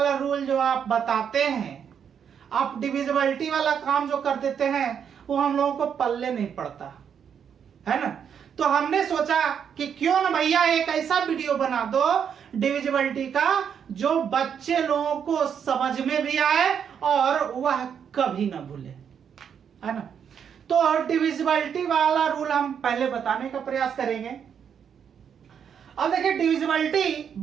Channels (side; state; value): left; quieter; 7.8 dB